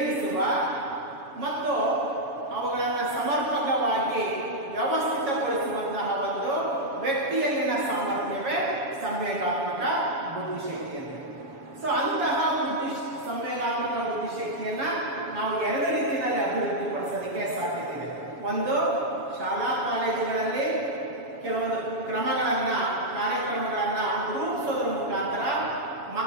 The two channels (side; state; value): left; late; 7.2 ms